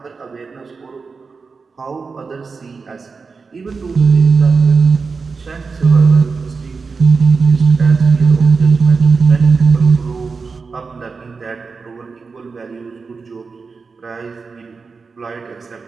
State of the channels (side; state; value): left; quieter; 4.7 dB